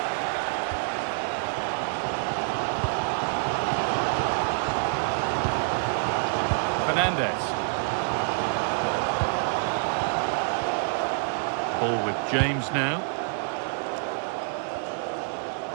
Fernandez. Ball with James now.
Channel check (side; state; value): left; silent; digital silence